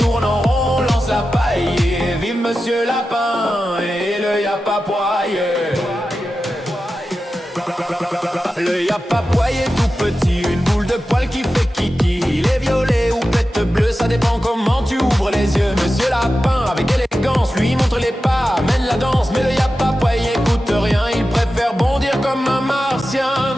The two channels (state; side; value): normal; both; correlation 0.92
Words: tourne en rond, on lance la paille. Et vive Monsieur Lapin et le y'a pas poiillé. Le y'a pas poiillé tout petit, une boule de poil qui fait kiki. Il est violet ou pète bleu, ça dépend comment tu ouvres les yeux. Monsieur Lapin avec élégance lui montre les pas, mène la danse. Mais le y'a pas poiillé écoute rien, il préfère bondir comme un martien.